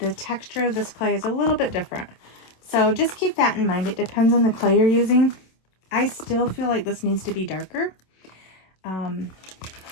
texture of this clay is a little bit different. So just keep that in mind. It depends on the clay you're using. I still feel like this needs to be darker.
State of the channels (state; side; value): late; right; 27 ms